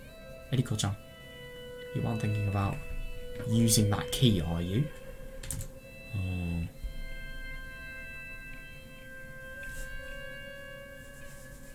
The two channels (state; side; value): identical; both; correlation 1.00